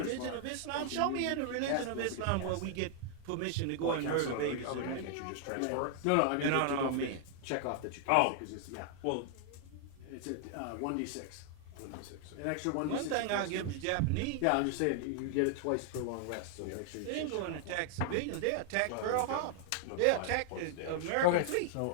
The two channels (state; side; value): different; both; correlation 0.00